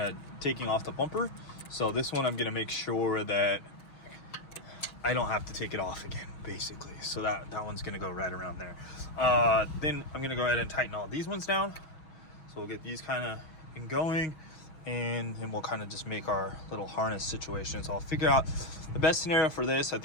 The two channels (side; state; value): right; late; 6.2 ms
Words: of taking off the bumper. So this one I'm gonna make sure that I don't have to take it off again, basically. So that one's gonna go right around there. Then I'm gonna go ahead and tighten all these ones down. So we'll get these kind of going, and then we'll kind of just make our little harness situation. So I'll figure out the best scenario for this. I